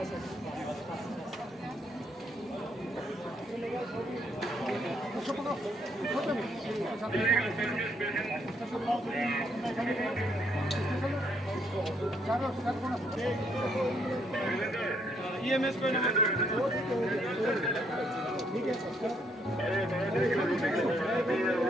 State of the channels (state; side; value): normal; both; correlation 0.71